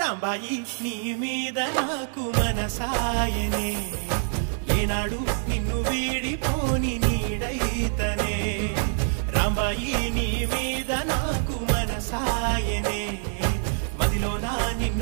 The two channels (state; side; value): silent; left; digital silence